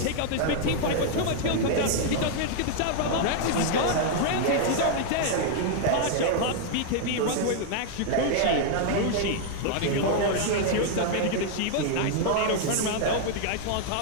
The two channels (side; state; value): both; different; correlation 0.00